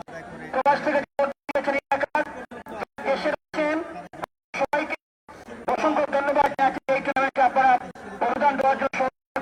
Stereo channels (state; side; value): identical; both; correlation 1.00